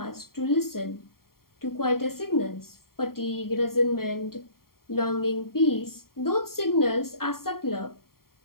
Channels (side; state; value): right; late; 0.93 ms